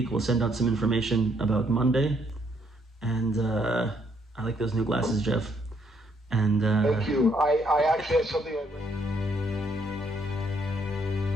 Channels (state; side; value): normal; both; correlation 0.71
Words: We'll send out some information about Monday. And I like those new glasses, Jeff. And thank you. I actually have something.